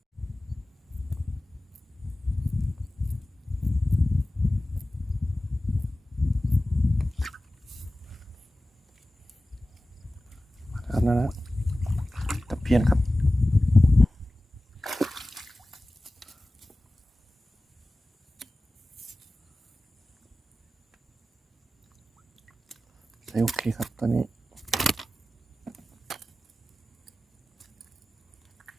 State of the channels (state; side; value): normal; both; correlation 0.96